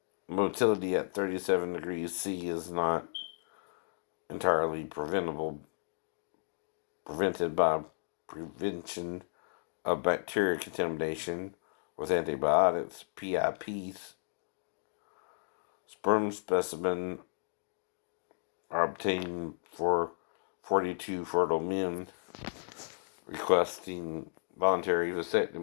motility at 37 degrees C is not entirely prevented by prevention of bacteria contamination with antibiotics. PIPs. Sperm specimen are obtained for 42 fertile men requesting voluntary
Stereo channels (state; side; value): silent; right; digital silence